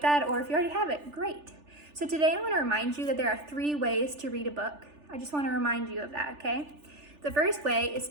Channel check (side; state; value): left; late; 3.4 ms